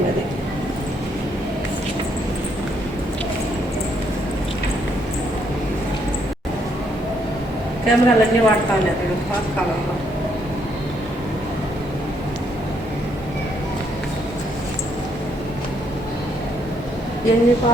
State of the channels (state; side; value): normal; both; correlation 0.72